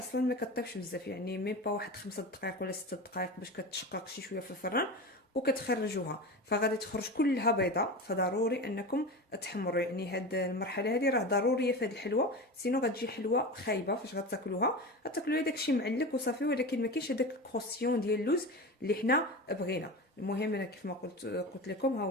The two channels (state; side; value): normal; both; correlation 0.27